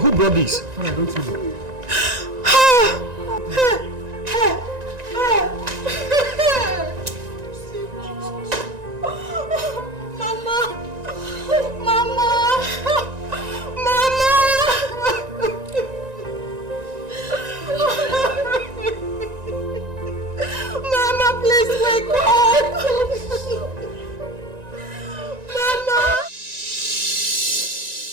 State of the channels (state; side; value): late; left; 1.9 ms